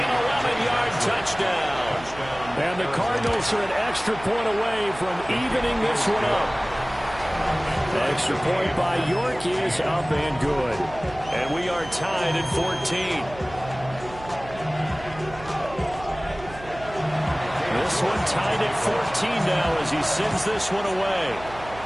11-yard touchdown. And the Cardinals are an extra point away from evening this one up. The extra point by York is up and good. And we are tied at 14. This one tied at 14 now as he sends this one away.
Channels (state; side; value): noise; right; hum, 16 dB below the sound